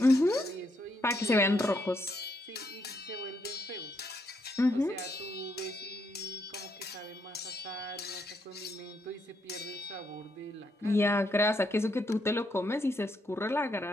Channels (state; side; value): normal; both; correlation 0.76